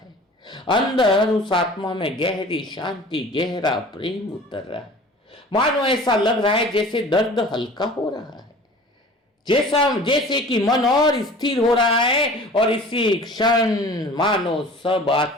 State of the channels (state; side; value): normal; both; correlation 0.43